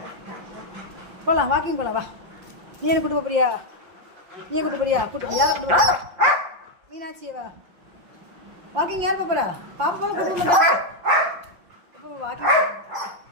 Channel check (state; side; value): late; left; 5.7 ms